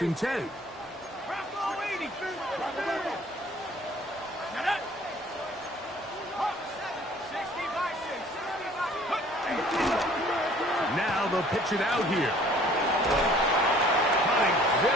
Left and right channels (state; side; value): normal; both; correlation 0.54